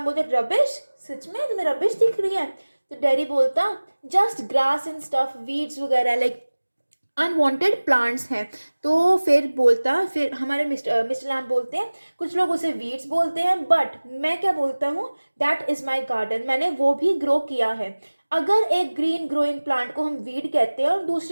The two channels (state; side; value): inverted; both; correlation -1.00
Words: बोलते हैं रबिश, सच में तुम्हें रबिश दिख रही है। तो डैडी बोलता just grass and stuff, weeds वगैरह, लाइक अनवांटेड प्लांट्स हैं। तो फिर हमारे मिस्टर लैम बोलते हैं कुछ लोग उसे वीड्स बोलते हैं, बट मैं क्या बोलता हूँ, दैट इज माई गार्डन, मैंने वो भी ग्रो किया है। अगर एक ग्रीन ग्रोइंग प्लांट को हम वीड कहते हैं और